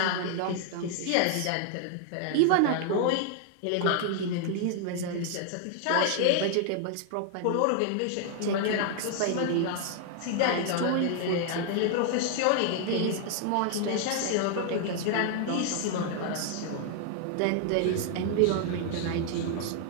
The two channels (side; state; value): both; different; correlation 0.00